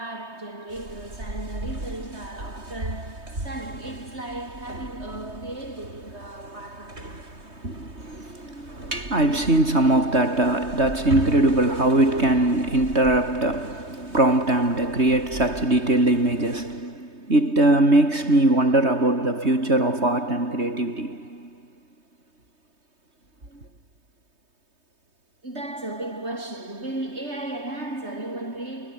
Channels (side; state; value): left; late; 3.2 ms